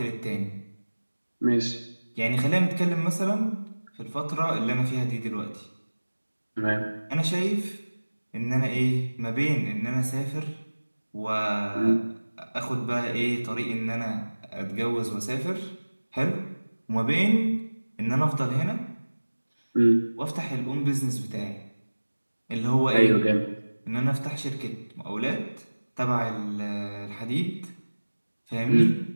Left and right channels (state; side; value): inverted; both; correlation -1.00